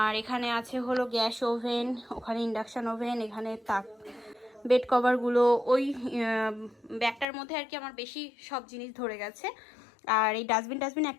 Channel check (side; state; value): right; drops out; at 7.2 s